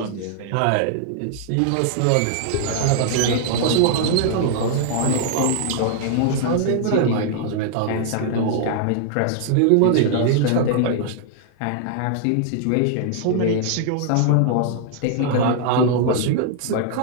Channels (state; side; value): different; both; correlation -0.01